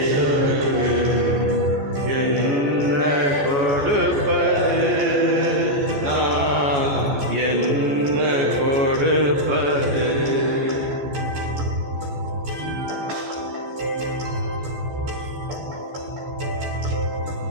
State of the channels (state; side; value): late; left; 14 ms